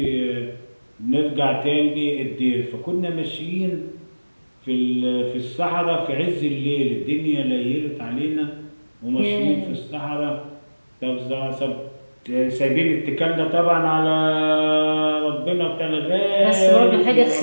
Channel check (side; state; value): both; inverted; correlation -1.00